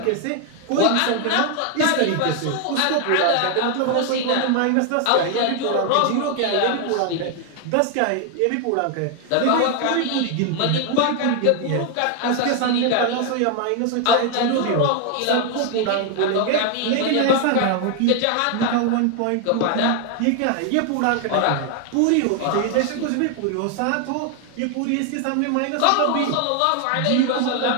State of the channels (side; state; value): both; different; correlation 0.00